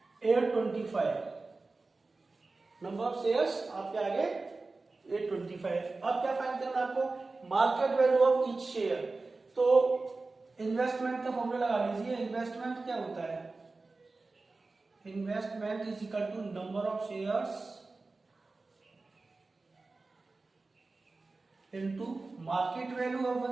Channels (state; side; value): quieter; left; 3.6 dB